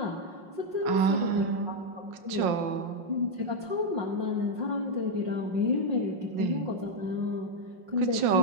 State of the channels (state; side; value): late; left; 5.7 ms